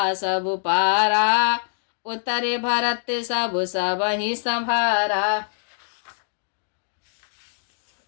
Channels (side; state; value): right; silent; digital silence